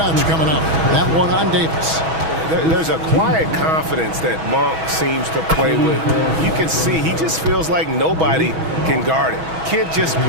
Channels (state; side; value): late; left; 6.2 ms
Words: coming up. That one on Davis. There's a quiet confidence that Monk seems to play with. You can see he just feels like nobody can guard him. Kid just